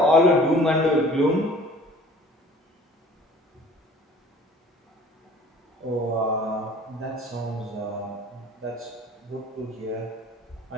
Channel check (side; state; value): both; normal; correlation 0.48